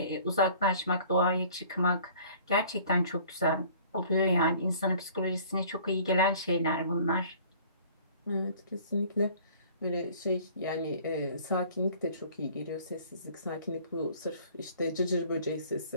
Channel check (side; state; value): both; inverted; correlation -0.51